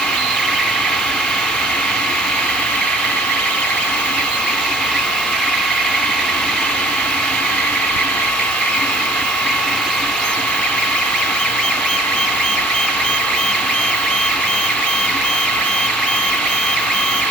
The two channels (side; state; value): both; normal; correlation 0.52